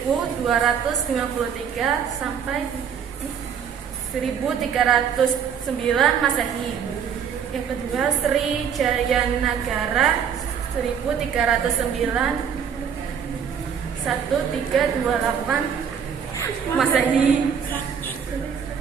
sampai 1309 Masehi. Yang kedua, Sri Jayanagara 1309 1328 Masehi.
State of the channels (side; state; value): left; quieter; 7.6 dB